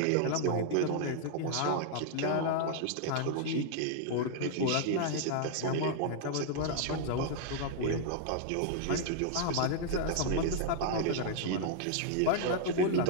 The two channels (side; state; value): both; different; correlation -0.01